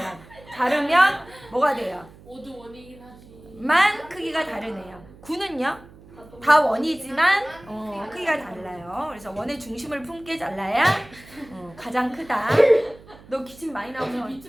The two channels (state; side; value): noise; right; hum, 22 dB below the sound